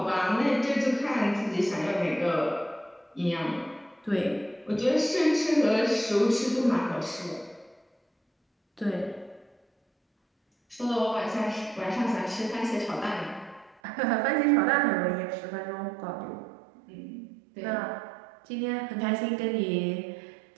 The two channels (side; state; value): left; drops out; at 13.8 s